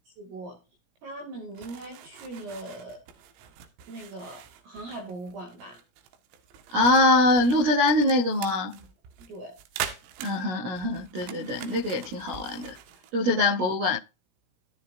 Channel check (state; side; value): late; left; 18 ms